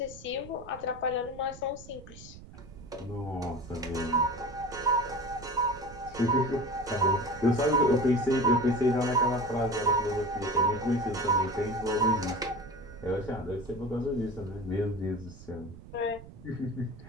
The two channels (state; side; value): noise; right; rumble, 17 dB below the sound